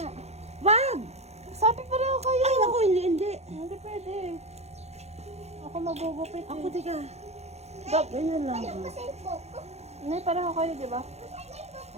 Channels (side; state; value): left; late; 0.31 ms